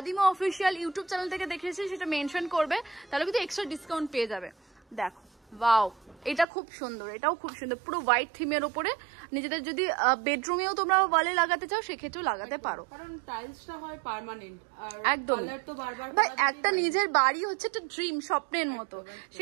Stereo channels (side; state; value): left; drops out; at 6.5 s